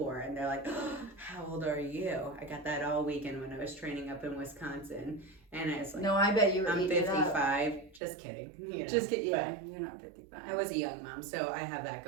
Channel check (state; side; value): drops out; left; at 8.0 s